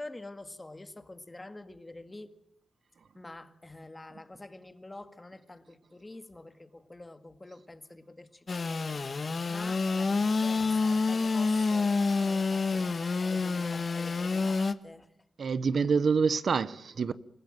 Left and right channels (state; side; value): normal; both; correlation 0.90